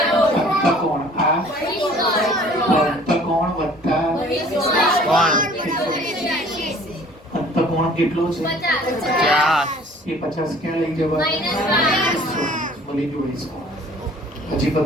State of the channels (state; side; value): normal; both; correlation 0.52